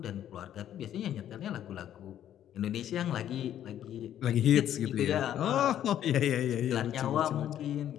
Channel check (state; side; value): quieter; right; 11.0 dB